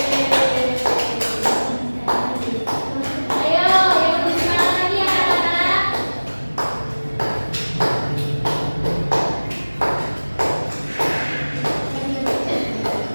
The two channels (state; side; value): inverted; both; correlation -1.00